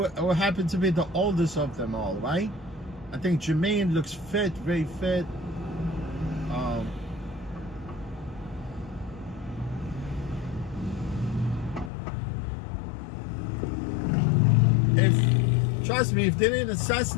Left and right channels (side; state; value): right; drops out; at 11.9 s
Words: will happen to be the oldest of them all, right? I think Jermaine looks fit, very fit. Trust me, if they didn't